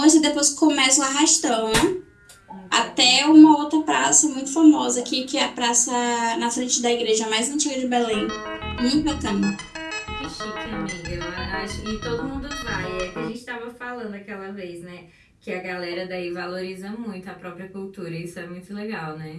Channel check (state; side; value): identical; both; correlation 1.00